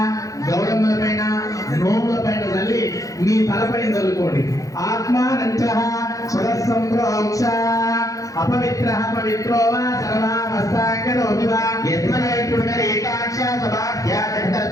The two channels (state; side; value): late; right; 0.16 ms